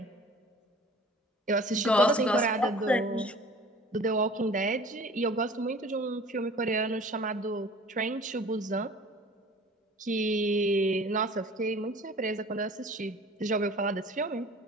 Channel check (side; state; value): both; normal; correlation 0.45